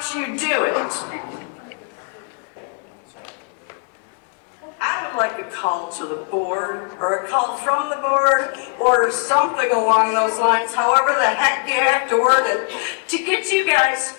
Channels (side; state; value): right; quieter; 38.7 dB